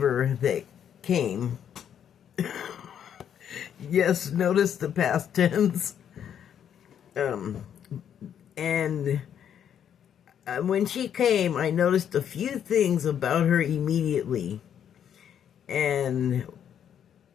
that came. Yes, notice the past tense. And when she came, I noticed a few things about her immediately. And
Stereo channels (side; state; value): right; quieter; 9.1 dB